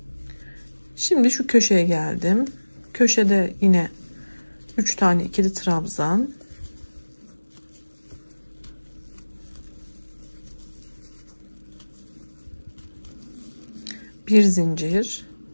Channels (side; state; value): both; inverted; correlation -1.00